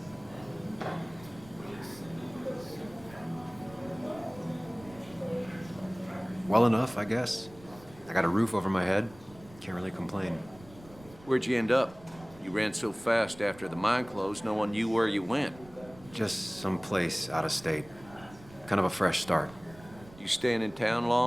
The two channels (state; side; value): noise; right; rumble, 21 dB below the sound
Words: Well enough, I guess. I got a roof over my head. Can't really complain. Where'd you end up? You ran so fast after the mine closed, no one knew where you went. Just someplace out of state. Kind of a fresh start. You staying in town